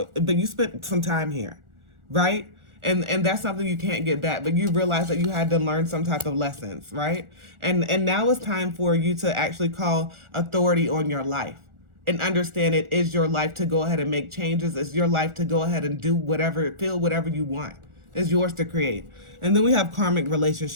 but you spent some time here, right? And that's something you can't get back, but you realize that you had to learn some type of lessons, right? And now it's time for you to actually call authority on your life and understand it is your life to go ahead and make changes. It's your life to go ahead and do whatever, feel whatever you want. It's yours to create. And then we have karmic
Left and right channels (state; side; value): late; left; 1.4 ms